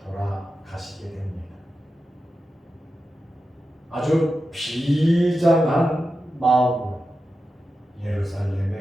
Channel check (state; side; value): normal; both; correlation 0.91